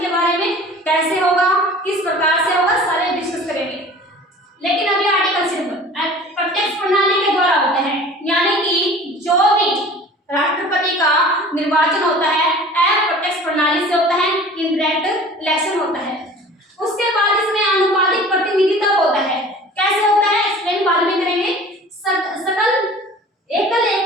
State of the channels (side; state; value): both; normal; correlation 0.43